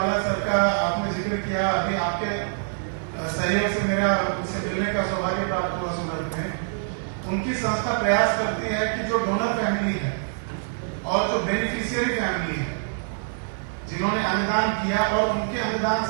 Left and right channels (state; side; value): silent; left; 56 dB below the other